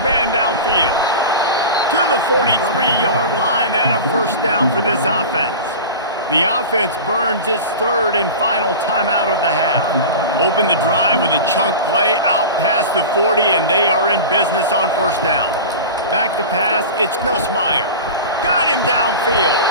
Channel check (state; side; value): inverted; both; correlation -0.30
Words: man downfield. To the 43-yard line and a first down for this offense. The offense burns its third and final timeout of the half. Open the drive with a chunk play out past the 40, and they are in business on first down. Back to pass, it's Nussmeier. Got him downfield.